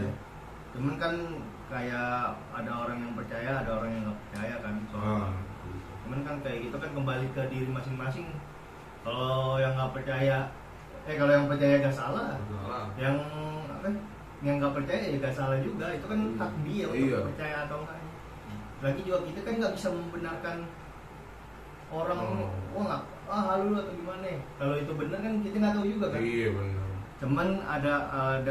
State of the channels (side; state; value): both; identical; correlation 1.00